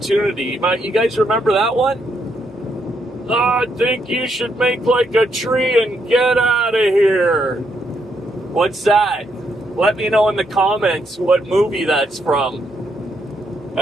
You guys remember that one? I think you should make like a tree and get out of here. What's that? Let me know in the comments what movie that's from.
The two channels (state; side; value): normal; both; correlation 0.77